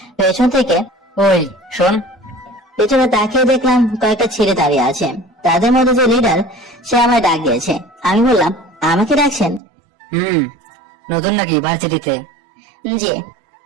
পেছন থেকে, ওই শোন, পেছনে তাকিয়ে দেখলাম কয়েকটা ছেলে দাঁড়িয়ে আছে। তাদের মধ্যে যে লিডার, সে আমায় ডাক দিয়েছে। আমি বললাম, আমাকে ডাকছেন? নতুন নাকি ভার্সিটিতে? জি।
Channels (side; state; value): left; drops out; at 9.6 s